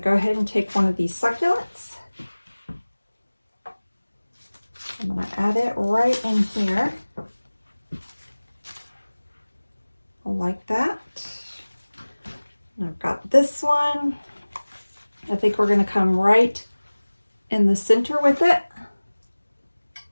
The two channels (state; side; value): inverted; both; correlation -1.00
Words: go ahead and take one of these succulents. I'm going to add it right in here. I like that. And I've got this one. I think we're going to come right in the center with it.